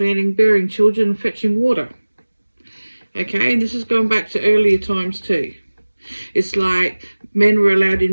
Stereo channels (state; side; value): inverted; both; correlation -1.00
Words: bearing children, and fetching water. Okay, and this has gone back to earlier times too. It's like men were allowed